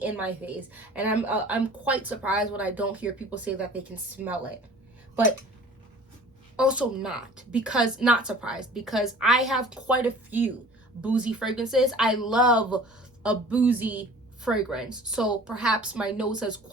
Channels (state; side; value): normal; both; correlation 0.46